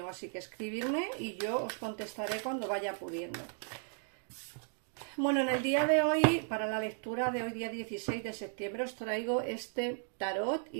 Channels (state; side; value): silent; left; 54 dB below the other